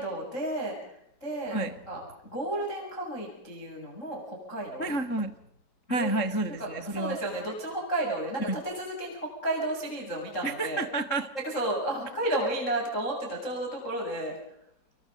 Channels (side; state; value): right; late; 3.8 ms